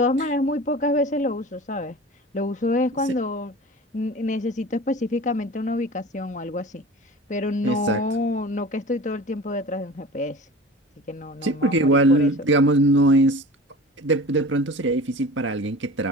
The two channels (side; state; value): both; normal; correlation 0.37